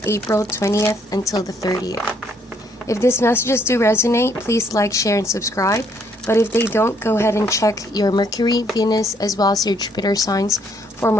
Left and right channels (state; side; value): normal; both; correlation 0.68